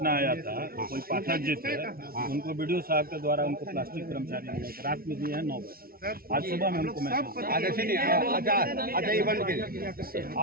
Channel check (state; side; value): late; left; 0.43 ms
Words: आया था, कोई पाठक जी थे, उनको बीडीओ साहब के द्वारा उनको प्लास्टिक कर्मचारी रात में दिए हैं 9 बजे, आज सुबह में हमको